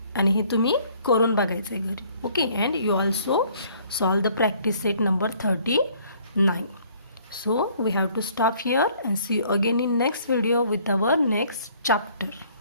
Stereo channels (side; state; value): both; inverted; correlation -0.60